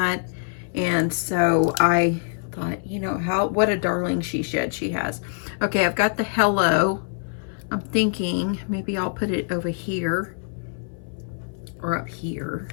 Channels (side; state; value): right; silent; 59 dB below the other